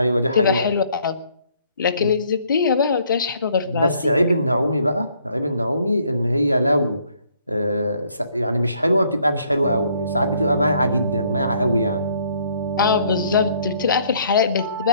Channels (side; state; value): both; inverted; correlation -0.65